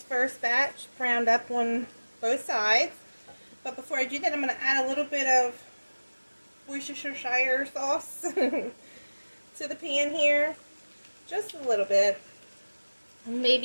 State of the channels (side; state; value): both; inverted; correlation -1.00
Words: first batch browned up on both sides. But before I do that, I'm going to add a little bit of Worcestershire sauce to the pan here. Just a little bit.